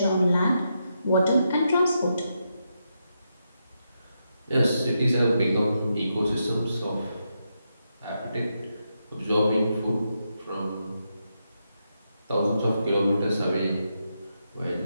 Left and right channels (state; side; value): inverted; both; correlation -0.84